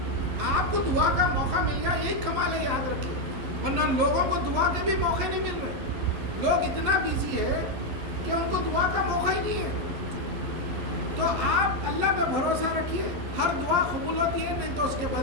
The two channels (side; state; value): left; late; 11 ms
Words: آپ کو دعا کا موقع مل گیا, یہی کمال ہے, یاد رکھیے. ورنہ لوگوں کو دعا کے بھی موقع نہیں مل رہے. لوگ اتنا بیزی ہے کہ ان کو دعا کا موقع ہی نہیں ہے. تو آپ اللہ پہ بھروسہ رکھیے, ہر دعا قبول ہوتی ہے, نہیں تو اس کے